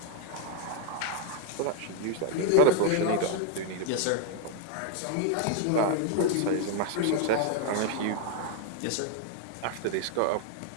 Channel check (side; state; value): both; different; correlation 0.00